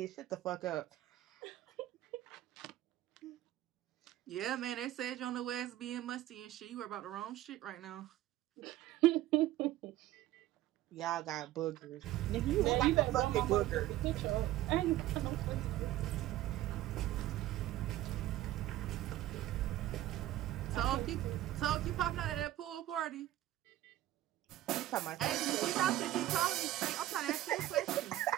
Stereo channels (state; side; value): quieter; left; 14.6 dB